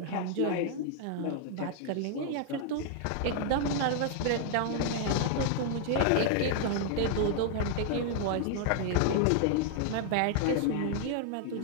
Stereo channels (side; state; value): both; different; correlation 0.00